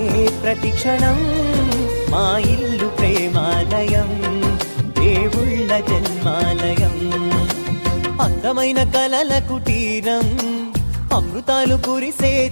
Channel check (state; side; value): inverted; both; correlation -1.00